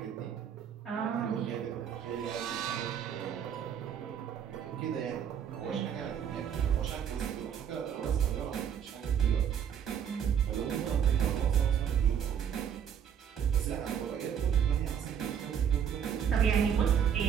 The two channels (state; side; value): quieter; left; 8.4 dB